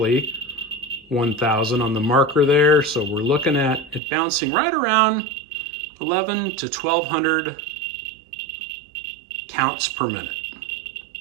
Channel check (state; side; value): drops out; left; at 4.0 s